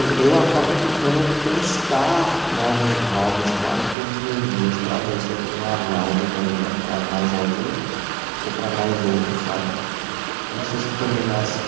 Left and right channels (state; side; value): drops out; left; at 4.0 s